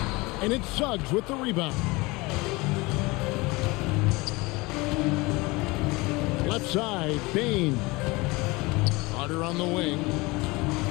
And it's Suggs with the rebound. Left side, Bain. Carter on the wing.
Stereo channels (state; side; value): quieter; right; 23.6 dB